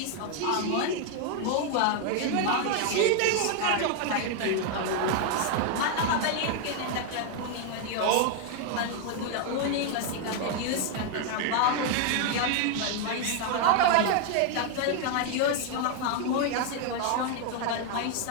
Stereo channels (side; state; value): both; different; correlation 0.01